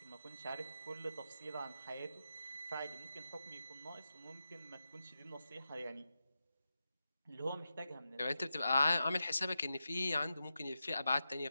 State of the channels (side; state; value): both; inverted; correlation -0.90